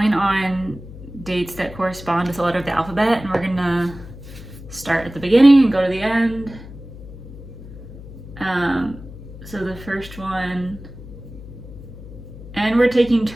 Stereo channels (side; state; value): left; noise; hum, 15 dB below the sound